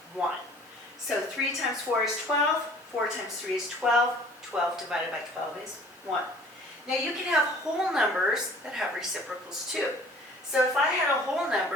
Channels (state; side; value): normal; both; correlation 0.50